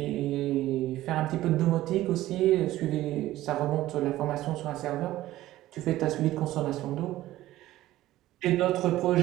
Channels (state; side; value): quieter; left; 15.3 dB